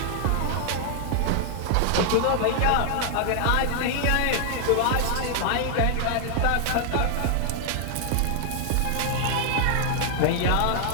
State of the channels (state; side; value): different; both; correlation 0.00